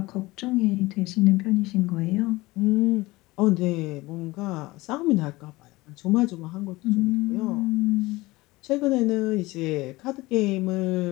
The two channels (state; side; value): quieter; right; 20.6 dB